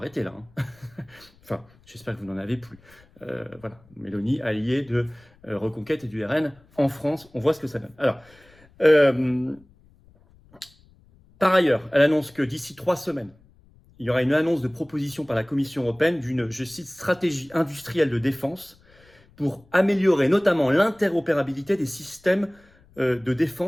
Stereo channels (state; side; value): noise; left; rumble, 29 dB below the sound